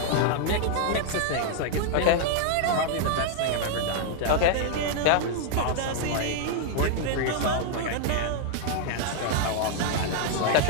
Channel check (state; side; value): different; both; correlation -0.01